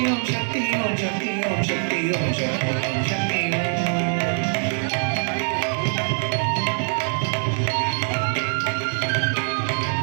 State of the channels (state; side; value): silent; left; 56 dB below the other